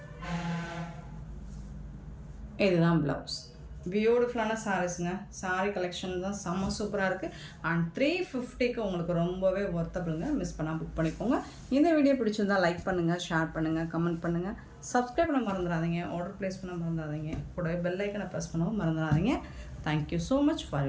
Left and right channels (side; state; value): both; identical; correlation 1.00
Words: இதுதான் ப்ளவுஸ். பியூட்டிஃபுல்லான சாரீஸுங்க. சாரீ கலெக்ஷன் தான் செம்ம சூப்பராக இருக்குது. அண்ட் 350க்கு உங்களுக்கு ரொம்பவே ஒர்த்தபிளுங்க. மிஸ் பண்ணால் புக் பண்ணிக்கோங்க. இந்த வீடியோ பிடிச்சிருந்தால் லைக் பண்ணுங்கள், ஷேர் பண்ணுங்கள், கமெண்ட் பண்ணுங்கள், சப்ஸ்கிரைப் பண்ண மறந்துடாதீங்க, ஆர்டர் ப்ளேஸ் பண்ண மறந்துடாதீங்க, கூடவே பெல் ஐக்கனை ப்ரெஸ் பண்ணவும் மறந்துடாதீங்க. Thank you so much for